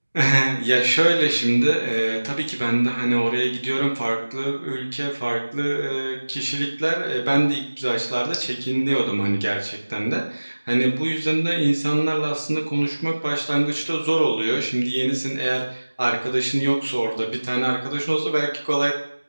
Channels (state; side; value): inverted; both; correlation -1.00